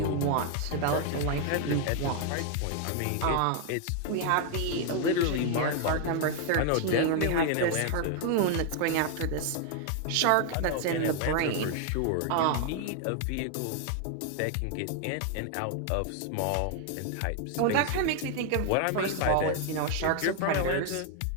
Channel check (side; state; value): both; different; correlation 0.00